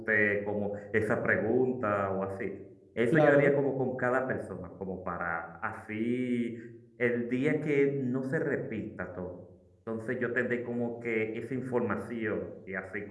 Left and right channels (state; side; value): identical; both; correlation 1.00